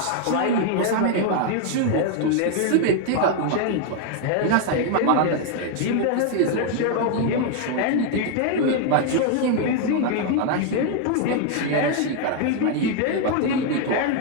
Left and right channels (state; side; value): different; both; correlation 0.01